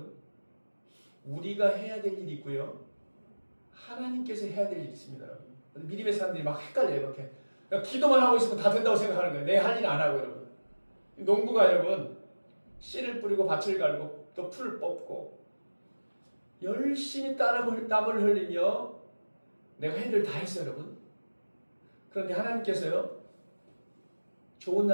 우리가 해야 될 일이 있고요. 하나님께서 해야 될 일이 있습니다, 여러분. 믿음의 사람들이 막 헷갈려요, 이렇게. 그러니까 기도만 하고 있으면 다 된다고 생각하는 거예요. 내 할 일 안 하고, 여러분. 농부가 여러분, 씨를 뿌리고 밭을 갈고 또 풀을 뽑고 열심히 땀을 흘리며 내가 해야 될 다 했어요, 여러분. 그런데 하나님께서요, 좋은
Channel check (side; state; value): both; inverted; correlation -1.00